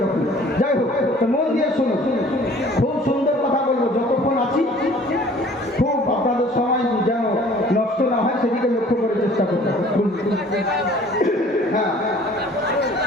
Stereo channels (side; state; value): both; normal; correlation 0.51